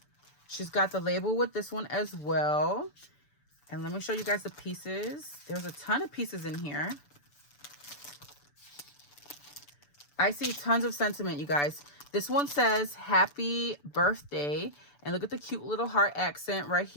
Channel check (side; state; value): right; late; 6.9 ms